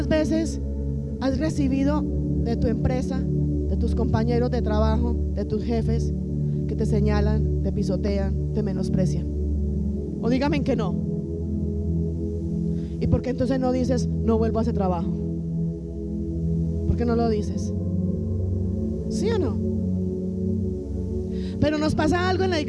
veces has recibido de tu empresa, de tus compañeros de trabajo, de tus jefes, que te señalan, te pisotean, te menosprecian? O dígame que no. ¿Y por qué entonces no dices: no vuelvo a ese trabajo? ¿Por qué no lo dices? ¿Sí o no? Pero nos pasa algo en la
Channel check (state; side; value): identical; both; correlation 1.00